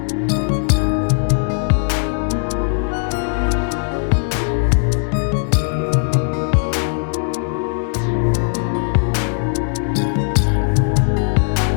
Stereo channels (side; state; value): right; silent; 58 dB below the other